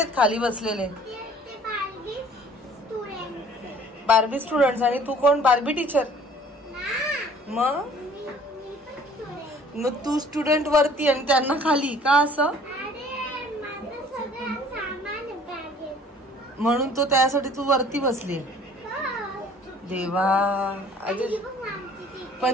खाली बसलेले? Barbie students. आणि तू कोण? Barbie teacher. मग तू स्टुडंट वरती आणि त्यांना खाली का? असं म्हणून तो त्यासाठी तू वरती बसली. देवा,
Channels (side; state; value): both; normal; correlation 0.53